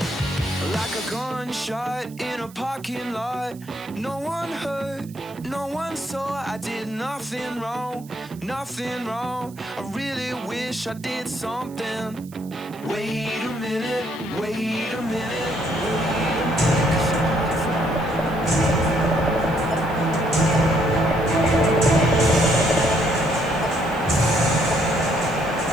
Like a gunshot in a parking lot. No one heard, no one saw. I did nothing wrong, nothing wrong. I really wish I did something. Wait a minute, wait a minute, wait a minute.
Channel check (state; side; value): noise; right; hiss, 23 dB below the sound